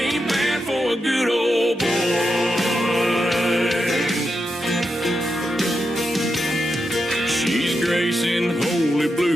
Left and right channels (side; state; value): both; normal; correlation 0.86